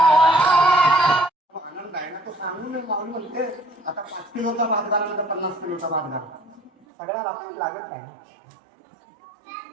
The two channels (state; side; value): drops out; left; at 6.7 s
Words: आनंद आहे ना तो सांगून मागून म्हणते आता 5 किलोचा भात घाला नंतर 50 किलोचा भात घाला सगळ्या आपली लागत नाही